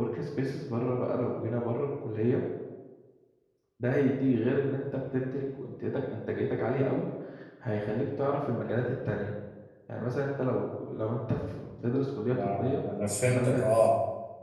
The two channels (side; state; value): both; identical; correlation 1.00